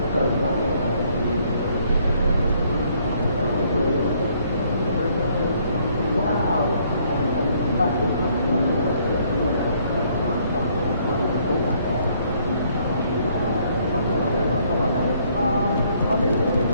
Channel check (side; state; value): both; inverted; correlation -0.66